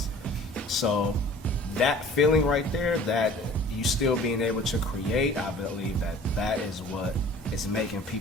So that feeling right there, that you still being able to create, I believe that is what is making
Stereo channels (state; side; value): normal; both; correlation 0.47